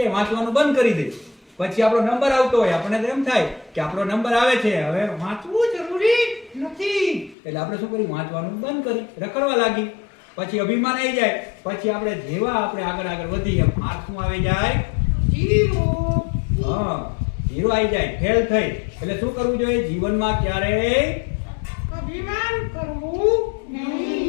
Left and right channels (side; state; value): right; drops out; at 7.4 s